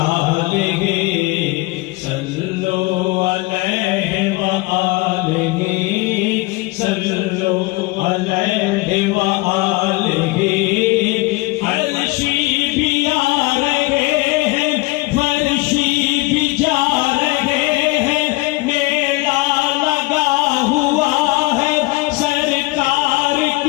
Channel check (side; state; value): right; quieter; 22.1 dB